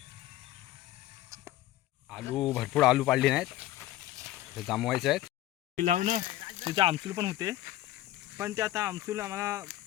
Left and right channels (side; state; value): right; quieter; 14.4 dB